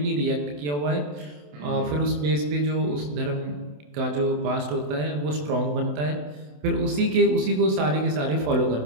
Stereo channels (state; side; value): late; left; 27 ms